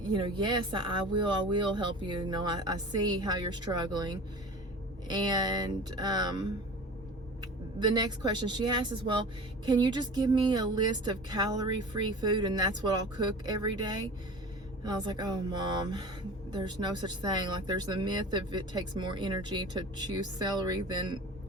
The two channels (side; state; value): both; normal; correlation 0.38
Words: know, yes, I will help you. You know, I see how you're struggling. And the next question she asked is, well, can you just give me a list of calorie-free food and that's what I'll cook every day? And I was like, oh, Mom, there's no such thing. Like, there's the myth of it takes more energy to chew celery than